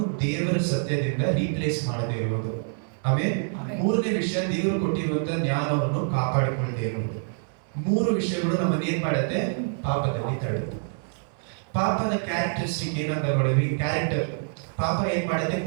ದೇವರ ಸತ್ಯದಿಂದ ರೀಪ್ಲೇಸ್ ಮಾಡದೇ ಇರುವುದು. ಆಮೇಲೆ 3ನೇ ವಿಷಯ ದೇವರು ಕೊಟ್ಟಿರುವಂತ ಜ್ಞಾನವನ್ನು ಕಾಪಾಡಿಕೊಳ್ಳದೆ ಇರುವುದು. 3 ವಿಷಯಗಳು ನಮ್ಮನ್ನ ಏನ್ ಮಾಡುತ್ತೆ? ಪಾಪದಲ್ಲಿ ತಳ್ಳುತ್ತೆ. ಪಾಪದ ಕ್ಯಾರೆಕ್ಟರಿಸ್ಟಿಕ್ ಏನಂತ ನೋಡಿದ್ವಿ. ಕ್ಯಾರೆಕ್ಟರ್ ಪಾಪ ಏನ್ ಮಾಡುತ್ತೆ?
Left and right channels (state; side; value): silent; left; digital silence